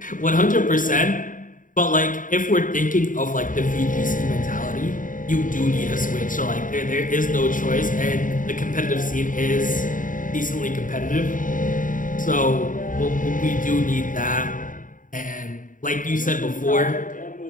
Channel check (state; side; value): late; right; 0.39 ms